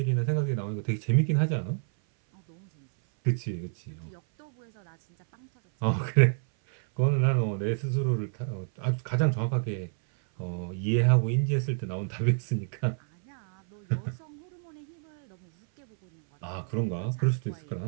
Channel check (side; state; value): left; silent; 58 dB below the other